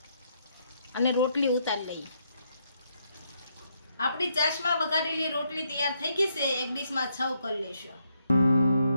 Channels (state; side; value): inverted; both; correlation -0.76